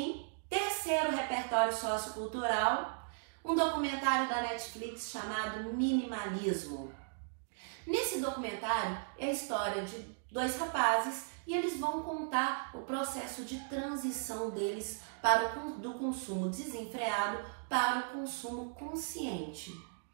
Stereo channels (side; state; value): left; silent; digital silence